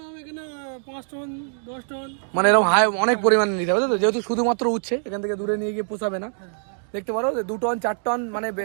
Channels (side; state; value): left; silent; digital silence